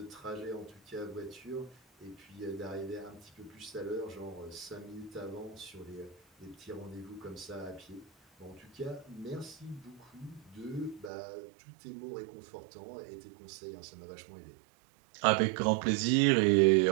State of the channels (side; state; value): left; drops out; at 11.1 s